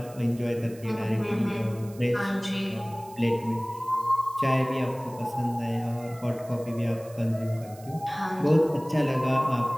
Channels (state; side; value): noise; right; hiss, 22 dB below the sound